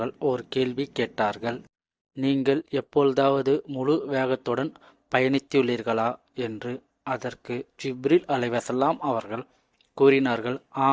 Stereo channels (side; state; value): both; identical; correlation 1.00